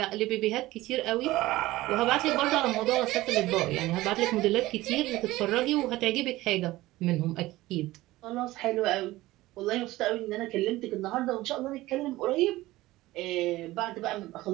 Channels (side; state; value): left; quieter; 17.8 dB